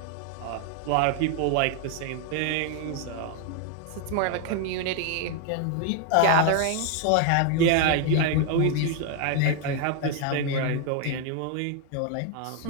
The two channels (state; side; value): different; both; correlation 0.01